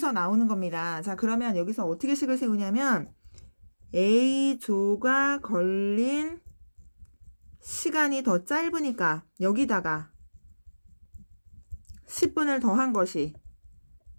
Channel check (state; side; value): inverted; both; correlation -1.00